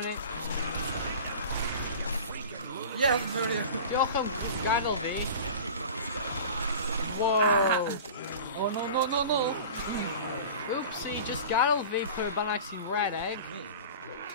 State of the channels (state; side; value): inverted; both; correlation -0.37